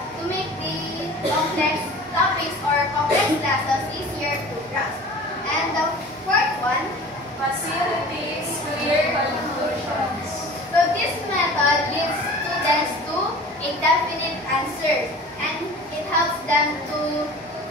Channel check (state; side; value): normal; both; correlation 0.41